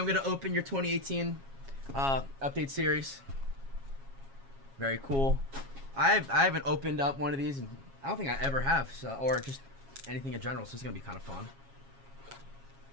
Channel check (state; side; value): late; left; 7.3 ms